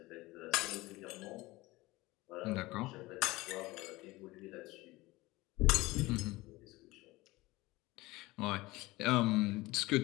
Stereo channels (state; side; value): quieter; right; 20.4 dB